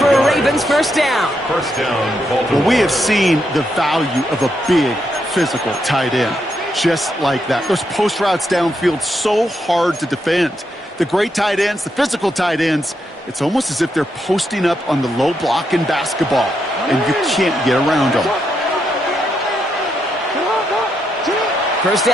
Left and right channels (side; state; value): both; normal; correlation 0.81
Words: a Ravens first down. First down, Baltimore. Well, we have seen the value of a big, physical tight end. Just like that. Those post routes downfield, so hard to defend. The great tight ends, the physical tight ends, it's almost as if they're posting up on the low block in basketball, and you can't get around them. First